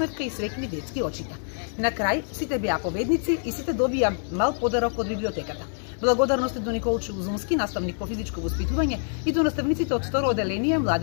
и среќни детски очита. На крај сите беа победници и сите добија мал подарок од библиотеката. Благодарности до Николчо Узунски, наставник по физичко воспитување, и до наставниците од второ оделение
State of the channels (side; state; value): right; silent; digital silence